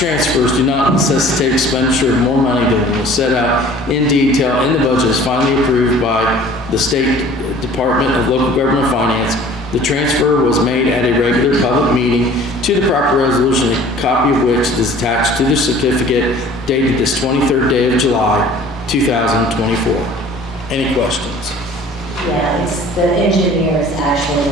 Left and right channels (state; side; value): normal; both; correlation 0.48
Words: do not necessitate expenditure of more money than was set out in detail in the budget is finally approved by the State Department of Local Government Finance. The transfer was made at a regular public meeting to the proper resolution, a copy of which is attached to the certificate dated this 23rd day of July, 2024. Any questions? Yeah, it's, the engineer is actually